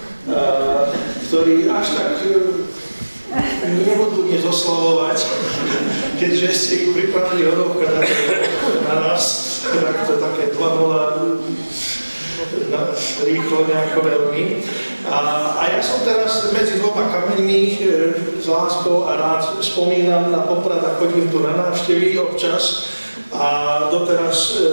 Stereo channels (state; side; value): inverted; both; correlation -1.00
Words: ktorí až tak nebudú dnes oslavovať, keďže ste ich pripravili hodovka na nás, tak to také 2-0 rýchlo nejako veľmi. A ja som teraz medzi dvoma kameňmi s láskou a rád spomínam na Poprad a chodím tu na návštevy občas a doteraz